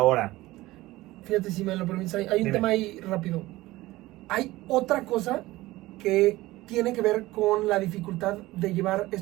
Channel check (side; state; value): left; quieter; 18.3 dB